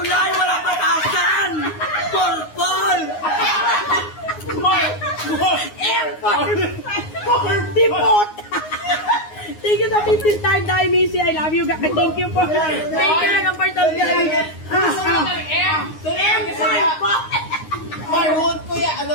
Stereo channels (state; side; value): late; right; 9.6 ms